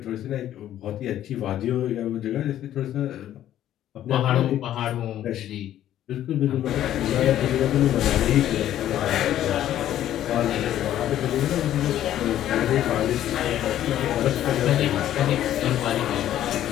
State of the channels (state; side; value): quieter; right; 12.0 dB